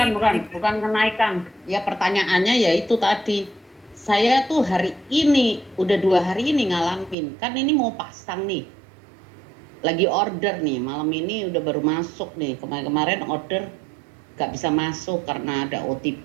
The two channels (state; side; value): drops out; left; at 7.2 s